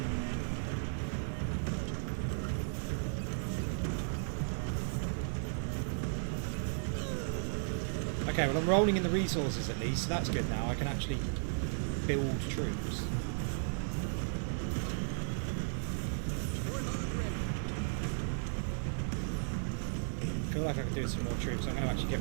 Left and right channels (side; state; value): left; silent; digital silence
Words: Okay, well I'm rolling in the resources at least, so that's good now. I can actually build troops. I feel like I could do some more troops. I'm going to actually